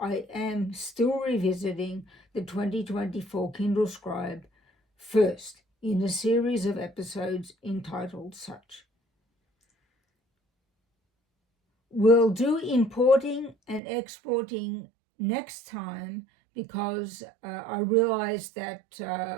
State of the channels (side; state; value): left; drops out; at 13.8 s